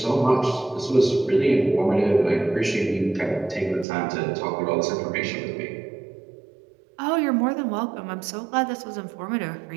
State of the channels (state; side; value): drops out; left; at 3.9 s